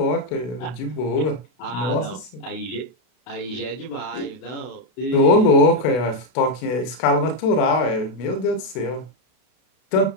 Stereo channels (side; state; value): right; late; 32 ms